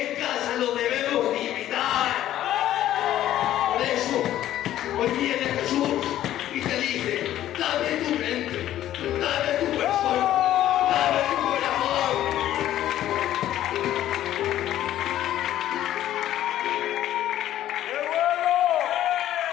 casa lo debemos imitar. Por eso, hoy viene Jesús y te dice, dame tu mente, dame tu persona, dame tu corazón.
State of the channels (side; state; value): right; quieter; 12.7 dB